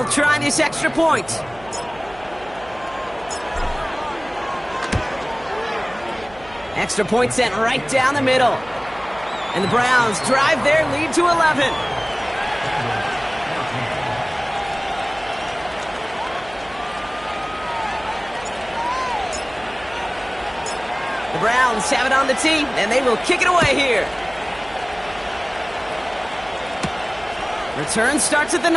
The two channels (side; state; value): right; noise; hum, 22 dB below the sound